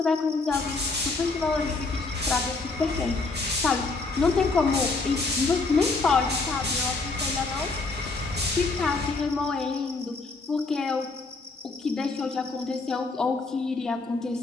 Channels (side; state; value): right; quieter; 3.7 dB